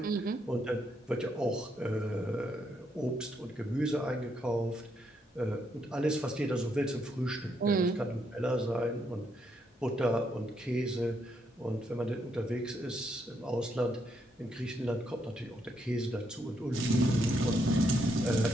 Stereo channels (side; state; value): both; normal; correlation 0.76